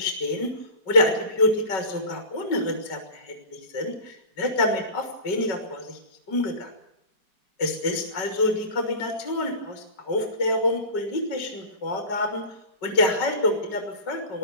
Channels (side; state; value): right; late; 5.3 ms